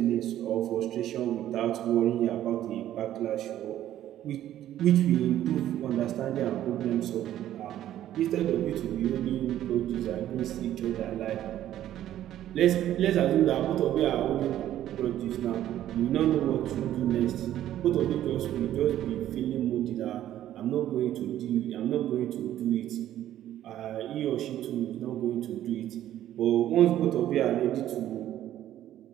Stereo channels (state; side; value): quieter; left; 12.3 dB